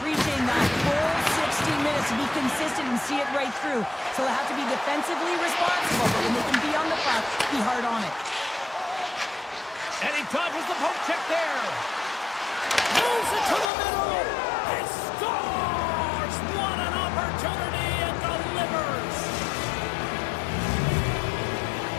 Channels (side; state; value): right; drops out; at 13.7 s